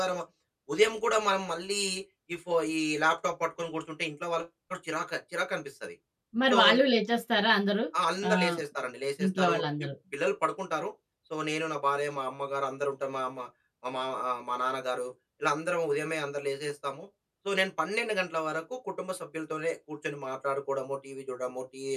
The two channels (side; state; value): both; identical; correlation 1.00